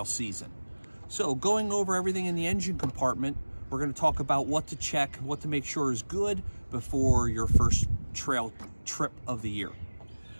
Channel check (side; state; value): both; inverted; correlation -1.00